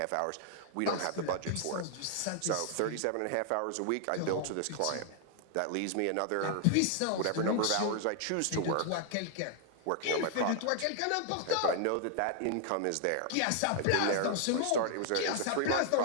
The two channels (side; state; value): both; different; correlation 0.00